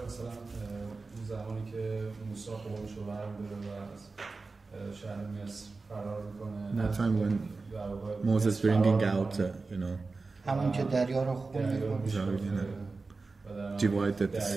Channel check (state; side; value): quieter; left; 3.9 dB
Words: مثلا زمانی که موسی قومش رو برمی‌داره و از شهر مصر فرار می‌کنه. That time when Moses bringing out, you know, همون که دریا رو خون می‌کنه. Divide the